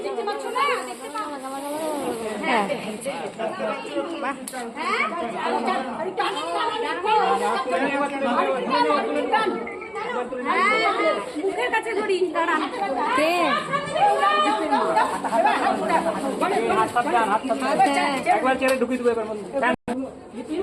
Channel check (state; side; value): identical; both; correlation 1.00